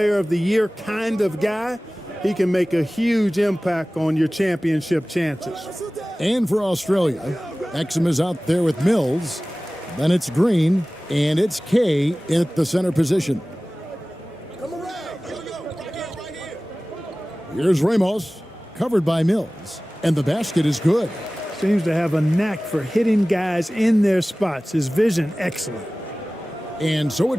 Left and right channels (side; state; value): both; normal; correlation 0.97